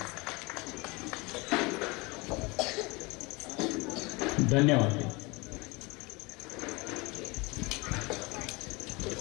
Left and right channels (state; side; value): quieter; right; 25.6 dB